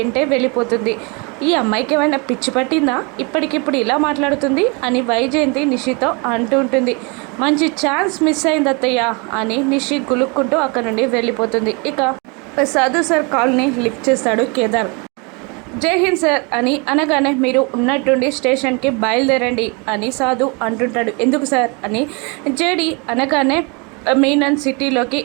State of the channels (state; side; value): quieter; left; 31.1 dB